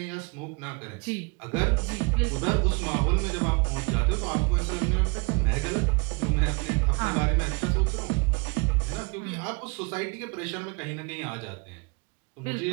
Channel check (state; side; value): quieter; left; 30.6 dB